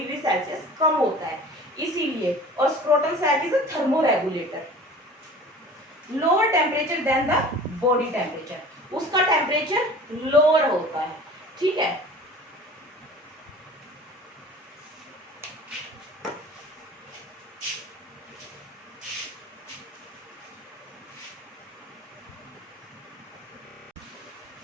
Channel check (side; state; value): both; normal; correlation 0.42